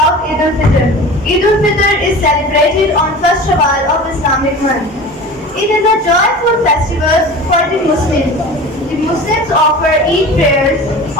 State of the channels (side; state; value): both; normal; correlation 0.36